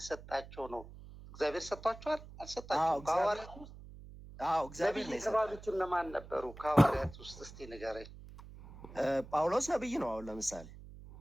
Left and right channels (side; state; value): right; noise; hum, 16 dB below the sound